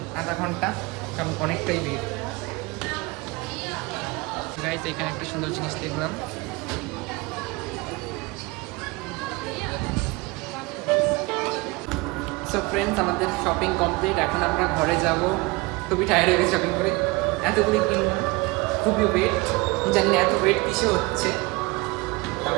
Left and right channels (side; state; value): left; quieter; 24.4 dB